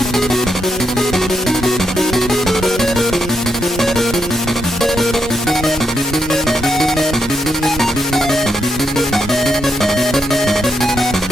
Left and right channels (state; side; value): normal; both; correlation 0.79